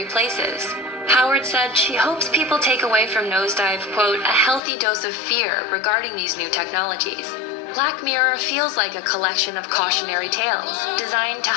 places. Howard said she hopes people take away from Nosedive, quote, a healthy dose of fear regarding these new technologies. Black Mirror feels like a collection of cautionary tales, designed to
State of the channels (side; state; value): right; drops out; at 4.6 s